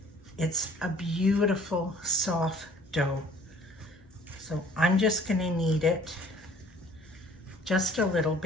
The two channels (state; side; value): normal; both; correlation 0.54